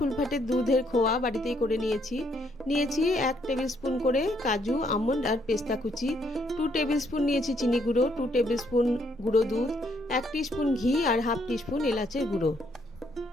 দুধের খোয়া বাড়িতেই করে নিয়েছি। 1 টেবিল স্পুন করে কাজু, আমন্ড আর পেস্তা কুচি। 2 টেবিল স্পুন নিয়েছি চিনি গুঁড়ো, 2 টেবিল স্পুন গুঁড়ো দুধ, 1 টিস্পুন ঘি আর 1/2 টিস্পুন এলাচের গুঁড়ো।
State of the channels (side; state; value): both; normal; correlation 0.71